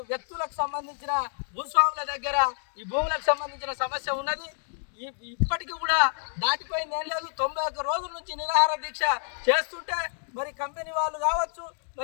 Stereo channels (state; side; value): silent; right; 59 dB below the other